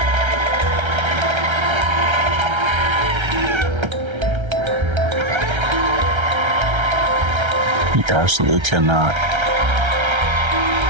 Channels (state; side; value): late; left; 1.3 ms